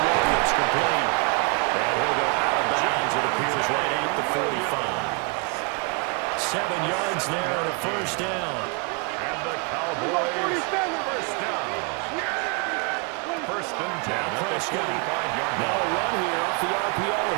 Williams, complete. And he'll go out of bounds, it appears, right at the 45. 7 yards there and a first down. And the Cowboys first down. First and 10 at the 45-yard Now a line. run here off the RPO.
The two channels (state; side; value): quieter; left; 33.0 dB